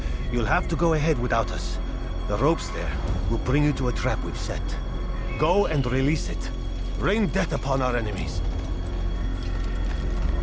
You'll have to go ahead without us. The ropes there will bring you to a trap we've set. Go and release it. Rain death upon our enemies.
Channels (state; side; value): identical; both; correlation 1.00